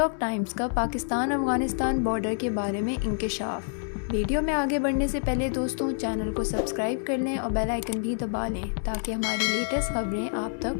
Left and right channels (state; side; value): silent; right; digital silence